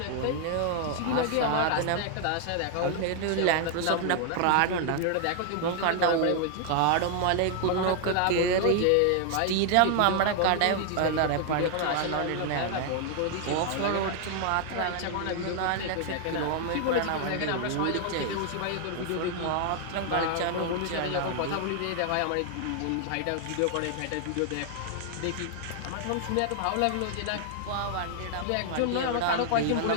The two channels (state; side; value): different; both; correlation 0.00